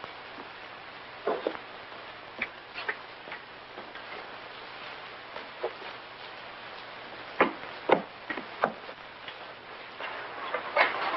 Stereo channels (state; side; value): noise; right; rumble, 26 dB below the sound